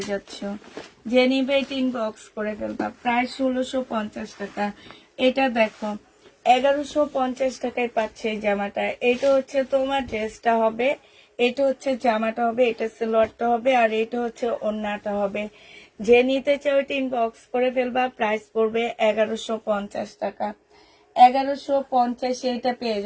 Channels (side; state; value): both; identical; correlation 1.00